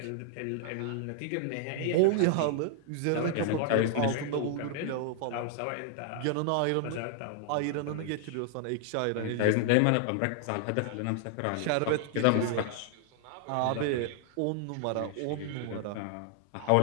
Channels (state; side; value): different; both; correlation 0.00